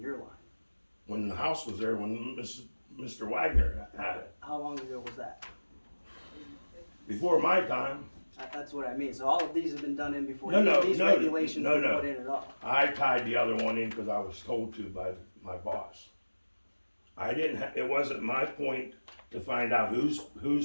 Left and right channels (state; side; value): inverted; both; correlation -1.00